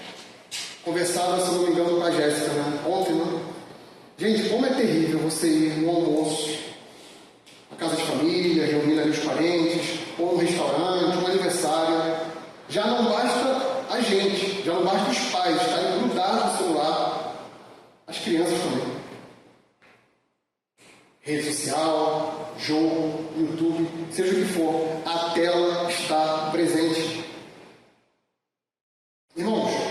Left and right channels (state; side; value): identical; both; correlation 1.00